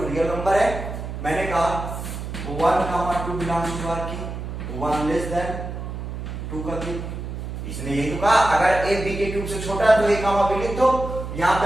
रियल नंबर है, मैंने कहा 1, 2 बिलोंग्स टू आर की 1 लेस देन 2 का क्यूब। इसने यही तो कहा अगर ए बी के क्यूब से छोटा है तो ए कामा बी लिख दो। यहाँ पे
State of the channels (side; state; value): right; noise; hum, 7 dB below the sound